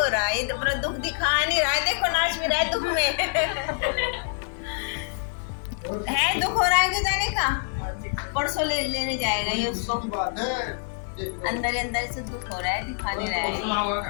रहा है। ये तो अपना दुख दिखा नहीं रहा है, देखो नाच भी रहा है दुख में। है दुख हो रहा है कि जाने का, परसों लेने जाएगा ये उसको, अंदर अंदर से दुख हो रहा है, दिखा नहीं रहा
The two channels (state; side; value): silent; right; digital silence